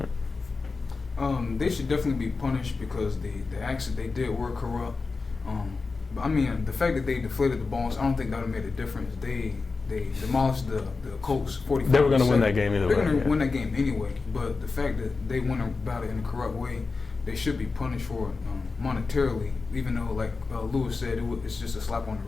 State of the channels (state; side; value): quieter; right; 4.2 dB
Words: They should definitely be punished because the acts that they did were corrupt. The fact that they deflated the balls, I don't think that would have made a difference. They demolished the Colts 45%. They were going to win that game either way. They're going to win that game anyway. But the fact that they went about it in a corrupt way, they should be punished for it monetarily. Even though, like Lewis said, it's just a slap on the